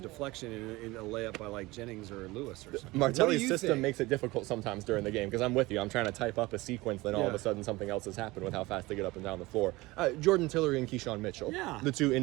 deflection in a layup by Jennings or Lewis or something. Martelli's system makes it difficult sometimes during the game because I'm with you. I'm trying to type up a sequence, then all of a sudden something else has happened with how fast they get up and down the floor. Jordan Tillery and Keyshawn Mitchell, the 2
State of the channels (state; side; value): quieter; left; 20.8 dB